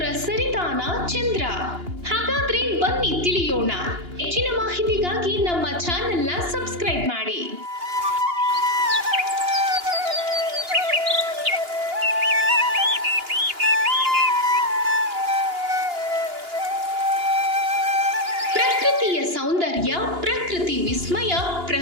ಸರಿತಾನ ಚಂದ್ರ. ಹಾಗಾದ್ರೆ ಬನ್ನಿ ತಿಳಿಯೋಣ. ಹೆಚ್ಚಿನ ಮಾಹಿತಿಗಾಗಿ ನಮ್ಮ ಚಾನೆಲ್ನ ಸಬ್ಸ್ಕ್ರೈಬ್ ಮಾಡಿ. ಪ್ರಕೃತಿಯ ಸೌಂದರ್ಯ, ಪ್ರಕೃತಿ ವಿಸ್ಮಯ,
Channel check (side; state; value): left; late; 2.9 ms